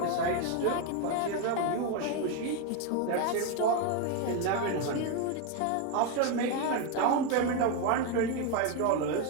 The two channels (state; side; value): different; both; correlation 0.02